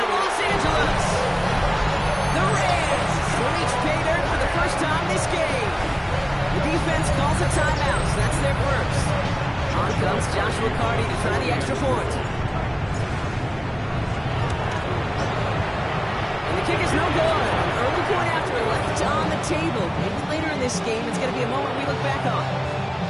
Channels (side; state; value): both; identical; correlation 1.00